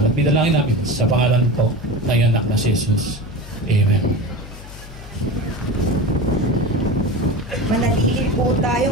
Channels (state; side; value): noise; left; hum, 15 dB below the sound